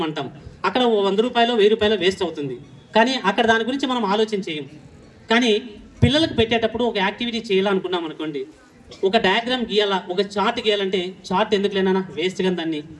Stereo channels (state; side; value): identical; both; correlation 1.00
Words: అంటాం. అక్కడ 100 రూపాయలు 1000 రూపాయలు వేస్ట్ అవుతుంది. కానీ అక్కడ దాని గురించి మనం ఆలోచన చేయం. కానీ పిల్లలకు పెట్టేటప్పుడు ఒక యాక్టివిటీ చేయాలనుకున్నాం అనుకోండి, ఒక డయాగ్రామ్ గీయాలా, ఒక చార్ట్ గీయాలంటే చార్ట్ ఎందుకు లేనా, వేస్ట్ గా దాన్ని